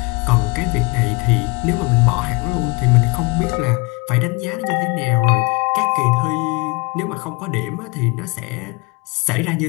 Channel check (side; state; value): right; quieter; 27.9 dB